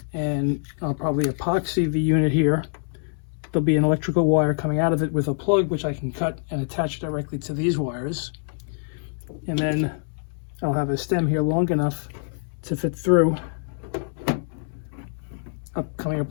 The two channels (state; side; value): silent; right; 62 dB below the other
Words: and I'll probably epoxy the unit here. There'll be an electrical wire coming out of it with a plug which I can cut and attach directly to these wires. And then I'll have a stem here long enough to fit through, coming